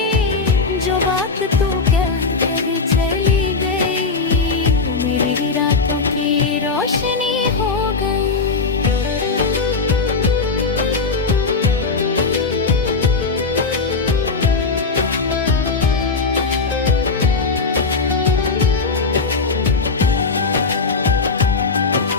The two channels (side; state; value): right; quieter; 4.3 dB